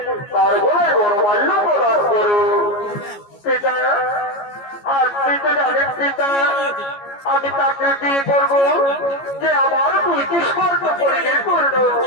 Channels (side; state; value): right; late; 14 ms